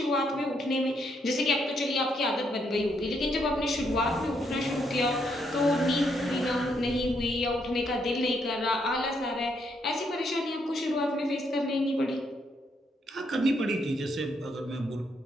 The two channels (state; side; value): normal; both; correlation 0.75